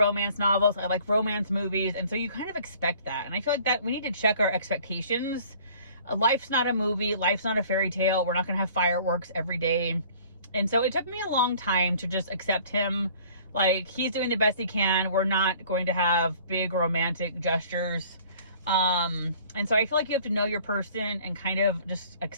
novels. I like romance movies. And so you kind of expect that. And I feel like that we need to check our expectations. Life's not a movie. Life's not a fairy tale. We're not going to have fireworks every day. And so it took me a long time to just accept him. Like, he's doing the best he can. We're not going to have big romantic gestures. And so I feel like you have to know your person and kind of just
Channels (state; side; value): inverted; both; correlation -0.52